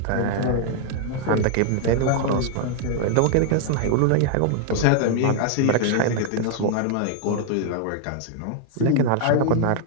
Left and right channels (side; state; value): both; different; correlation -0.01